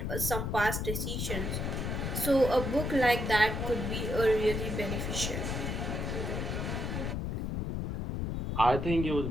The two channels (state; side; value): noise; left; rumble, 2 dB below the sound